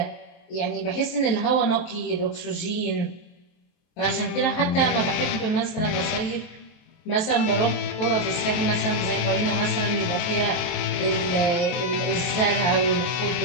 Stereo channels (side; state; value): right; late; 23 ms